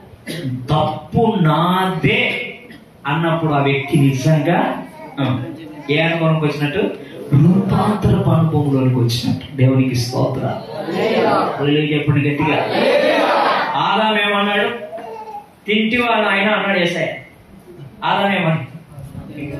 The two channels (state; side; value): identical; both; correlation 1.00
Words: తప్పు నాదే అన్నప్పుడు ఆ వ్యక్తి నిజంగా ఏ అనుభవంకి వచ్చినట్టు? రూపాంతరపు అనుభవంలోనికి వచ్చినట్టు. దేవునికి స్తోత్రం చెప్పండి గట్టిగా. ఆదాం ఏమన్నాడు? తింటివా నాయన అన్నాడు యేసయ్య. ఆదాం ఏమన్నా?